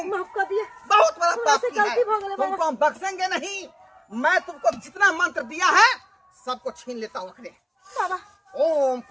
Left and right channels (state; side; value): identical; both; correlation 1.00